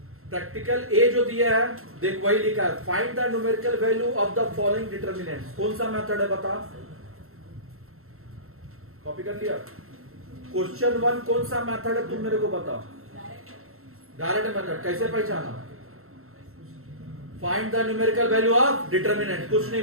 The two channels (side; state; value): left; late; 0.62 ms